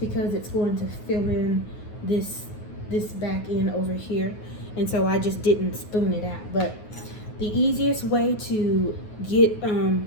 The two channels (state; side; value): late; right; 9.4 ms